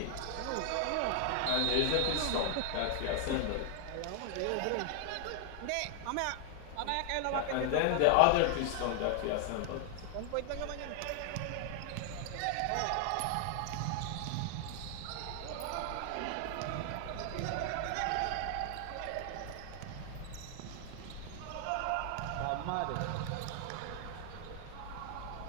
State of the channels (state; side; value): different; both; correlation 0.00